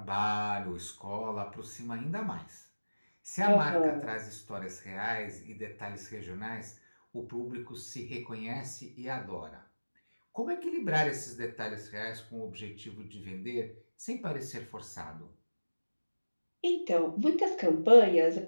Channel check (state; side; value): inverted; both; correlation -1.00